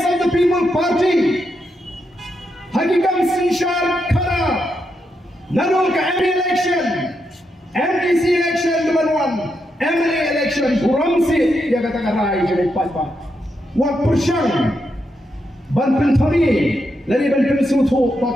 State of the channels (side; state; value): both; normal; correlation 0.83